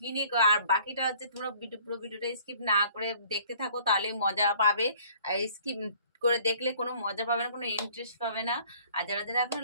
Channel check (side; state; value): both; inverted; correlation -0.55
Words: নিয়ে আর বাকিটা হচ্ছে তোমরা পুরো ভিডিওটা স্কিপ না করে দেখতে থাকো, তাহলে মজা পাবে। আর স্কিপ করে দেখলে কোনো মজা পাবে না, কোনো ইন্টারেস্ট পাবে না। আর যারা যারা এখন